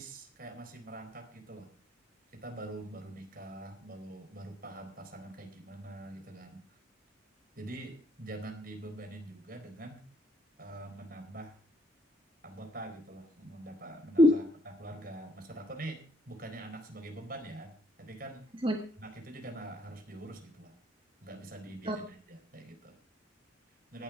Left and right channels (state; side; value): normal; both; correlation 0.67